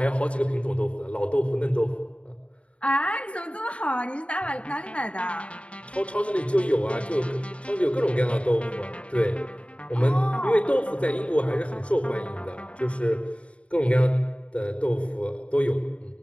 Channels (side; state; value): right; late; 0.062 ms